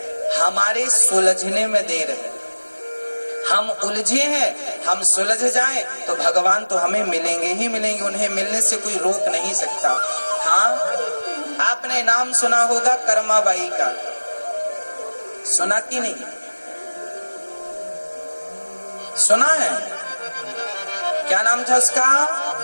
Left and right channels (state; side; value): inverted; both; correlation -1.00